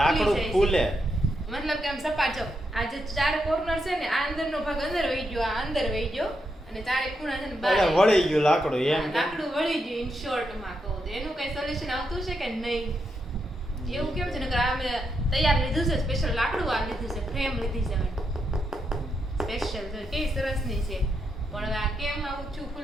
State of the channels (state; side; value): normal; both; correlation 0.82